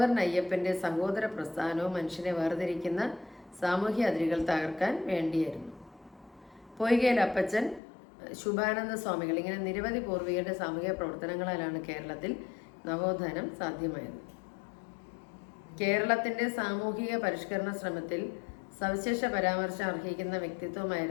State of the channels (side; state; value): right; drops out; at 7.8 s